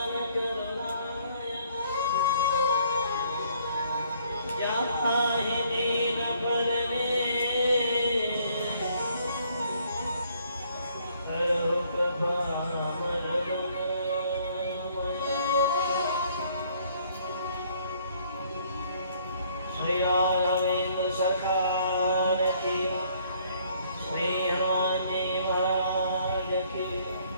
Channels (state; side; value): inverted; both; correlation -0.63